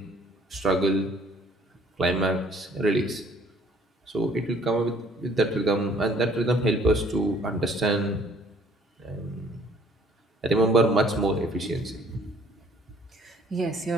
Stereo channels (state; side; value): normal; both; correlation 0.59